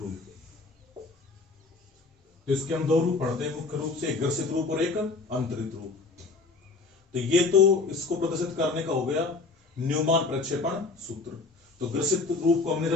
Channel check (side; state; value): right; quieter; 3.9 dB